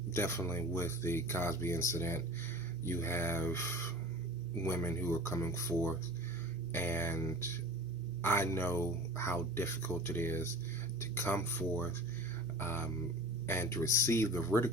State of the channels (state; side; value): normal; both; correlation 0.38